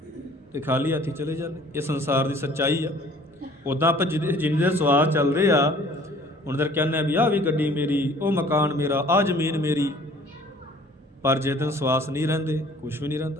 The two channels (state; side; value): normal; both; correlation 0.52